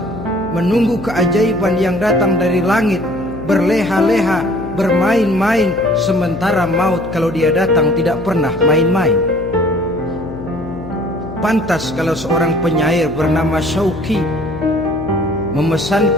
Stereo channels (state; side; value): noise; left; hum, 11 dB below the sound